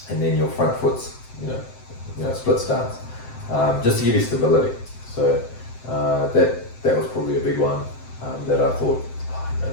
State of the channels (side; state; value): right; late; 7.7 ms